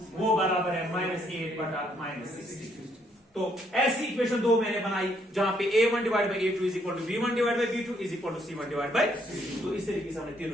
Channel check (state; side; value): normal; both; correlation 0.70